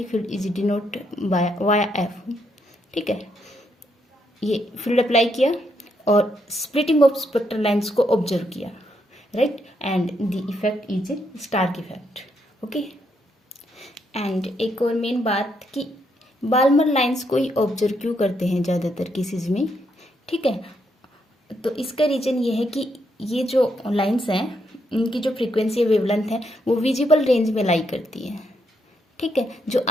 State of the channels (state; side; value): normal; both; correlation 0.77